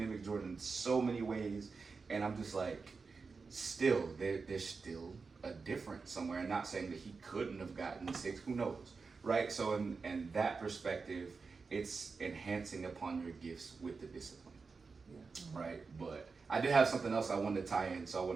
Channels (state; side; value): quieter; left; 4.6 dB